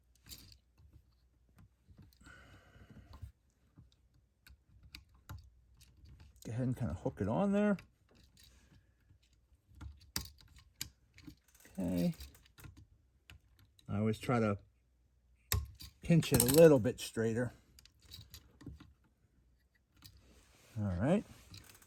Go ahead and kind of hook it on there. Okay. I always try to pinch it a little bit straighter. All right.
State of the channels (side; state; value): both; identical; correlation 1.00